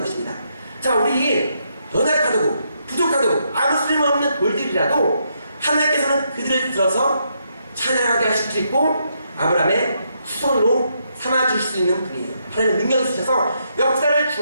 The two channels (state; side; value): inverted; both; correlation -0.78